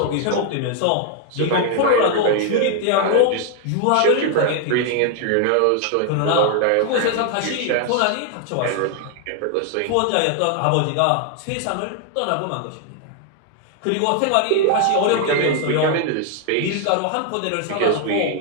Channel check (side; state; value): both; different; correlation 0.00